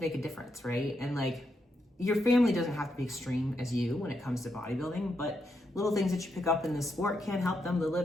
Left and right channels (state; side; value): normal; both; correlation 0.82